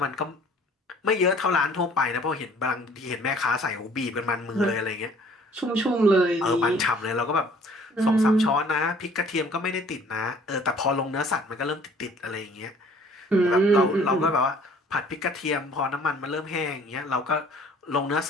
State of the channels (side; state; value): both; normal; correlation 0.55